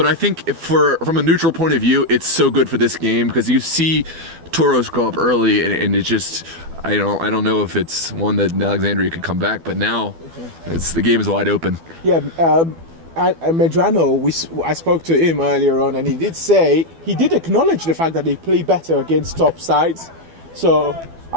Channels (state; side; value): late; left; 12 ms